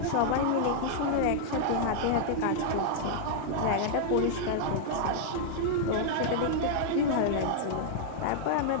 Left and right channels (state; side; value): different; both; correlation -0.01